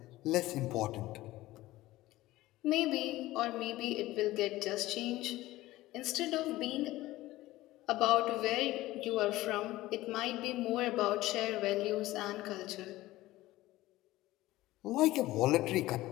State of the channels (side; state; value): right; quieter; 17.2 dB